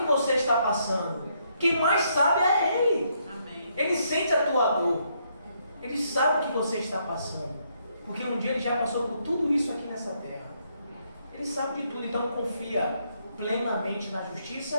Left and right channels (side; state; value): both; inverted; correlation -0.74